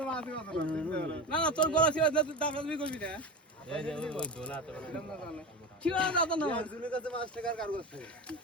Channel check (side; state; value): both; normal; correlation 0.24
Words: আছে না না তোর গলা চিবা দিতে টাকা তুমি করবি না এই যে ওই দোলা তো ছিল না তো না জুনি কাছে 5 টাকার কার করছে